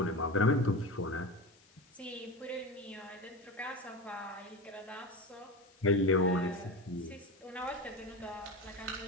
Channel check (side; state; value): left; noise; hiss, 28 dB below the sound